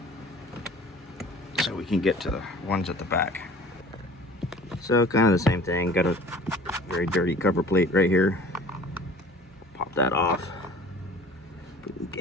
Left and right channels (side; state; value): both; normal; correlation 0.46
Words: so we can get to the ones at the back. So kind of the same thing. Got a very dirty cover plate right here. Pop that off.